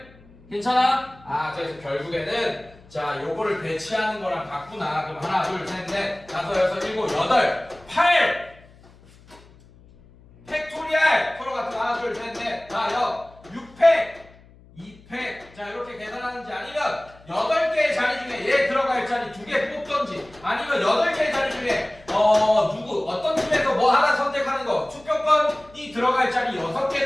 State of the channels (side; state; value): left; noise; hum, 25 dB below the sound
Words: 괜찮아? 그래서 결국에는 자, 요거를 배치하는 거랑 같구나. 그럼 하나, 둘, 셋, 넷, 다섯, 여섯, 일곱, 여덟, 8! 팩토리얼! 서로 같은 하나, 둘, 셋, 넷, 다, 6팩! 2팩. 자, 이렇게 계산하는지 아니면 8개의 자리 중에 얘 들어갈 자리 2개 뽑던지 아니면 8개의 자리 중에 어떤 팀에서 뭐 하나 선택하는 거 투표권이 들어갈 자리